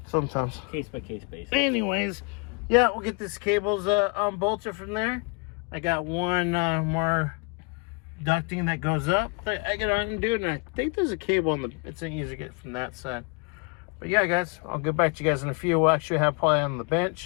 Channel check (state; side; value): quieter; right; 31.9 dB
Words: Sometimes. Case by case basis. Anyways, yeah, we'll get this cables unbolted from there. I got one more ducting that goes up that I gotta undo, and I think there's a cable on the. It's easy to get from that side. But yeah, guys, I'll get back to you guys in a few. We'll actually have probably on the